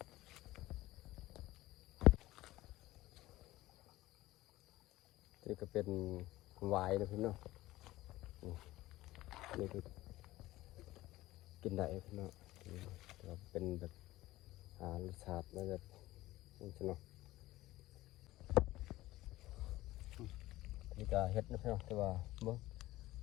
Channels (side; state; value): right; quieter; 17.1 dB